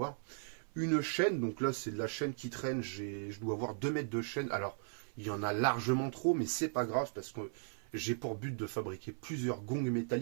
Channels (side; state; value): left; silent; 53 dB below the other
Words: Une chaîne, donc là c'est de la chaîne qui traîne. Je dois avoir 2 mètres de chaîne. Alors, il y en a largement trop, mais c'est pas grave, parce que j'ai pour but de fabriquer plusieurs gongs